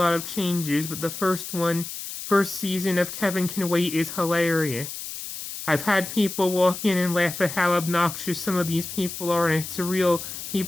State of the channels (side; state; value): left; noise; hiss, 8 dB below the sound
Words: of changes, but the first season of Kevin Can Wait is hilarious. I've had people walk in and laugh at how obnoxious some of these people are, and it's a real